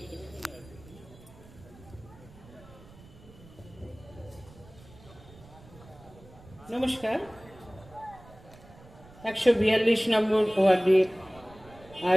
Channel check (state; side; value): noise; right; rumble, 22 dB below the sound